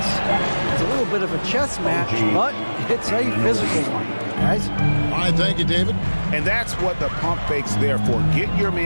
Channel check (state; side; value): inverted; both; correlation -1.00